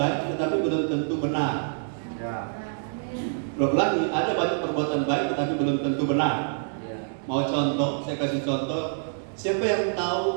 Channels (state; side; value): silent; left; digital silence